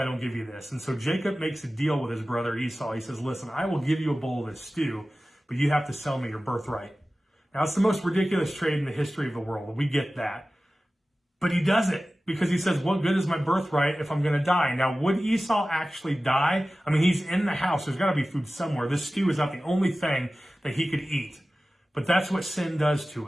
don't give you this. And so Jacob makes a deal with his brother Esau. He says, listen, I will give you a bowl of this stew, but you have to sell me your birthright. Now, it's the most ridiculous trade in the history of the world. We get that. But he does it because he says, what good is my birthright if I'm going to die? Now, would Esau actually die? I mean, he's in the house. There's got to be food somewhere. This stew is not the only thing that he could eat. But that's what sin does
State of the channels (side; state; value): both; normal; correlation 0.96